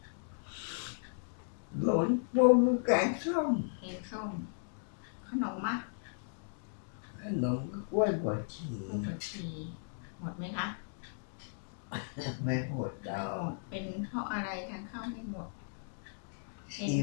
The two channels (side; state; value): right; silent; digital silence